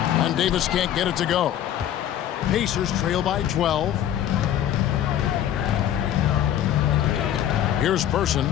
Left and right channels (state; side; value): quieter; right; 11.0 dB